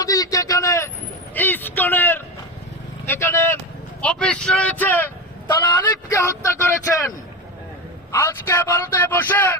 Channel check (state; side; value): normal; both; correlation 0.19